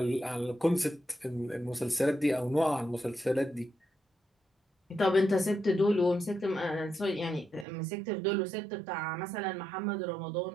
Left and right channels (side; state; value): left; drops out; at 7.7 s